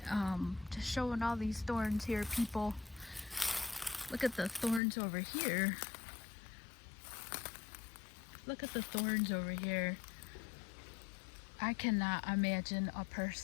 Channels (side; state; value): right; drops out; at 4.8 s